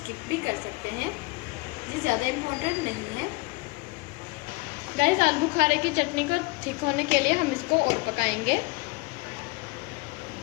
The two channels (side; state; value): right; quieter; 25.3 dB